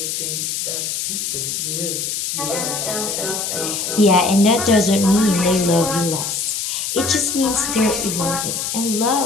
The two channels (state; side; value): noise; left; hiss, 2 dB below the sound